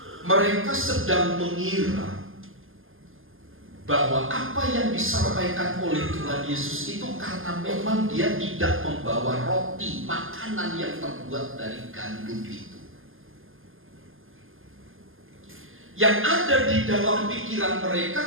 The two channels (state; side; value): late; left; 0.59 ms